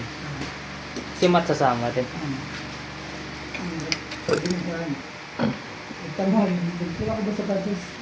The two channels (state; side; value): identical; both; correlation 1.00